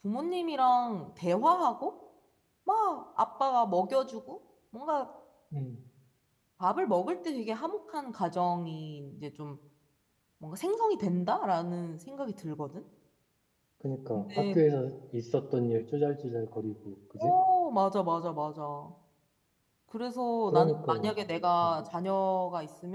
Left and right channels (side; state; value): both; identical; correlation 1.00